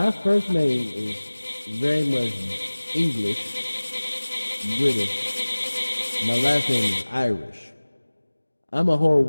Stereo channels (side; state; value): both; inverted; correlation -1.00